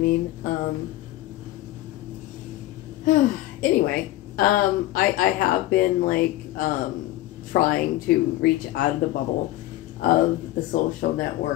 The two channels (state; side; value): quieter; right; 16.0 dB